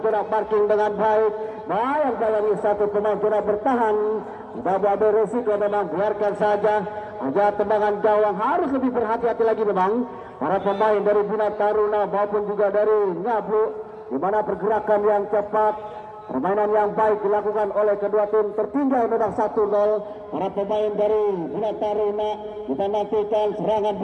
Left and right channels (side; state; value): both; identical; correlation 1.00